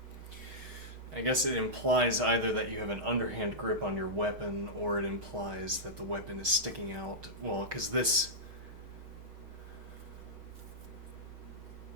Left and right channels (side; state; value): left; late; 6.3 ms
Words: I guess it implies either that you have an underhand grip on your weapon, or it implies that the weapon is sticking out. Well, because this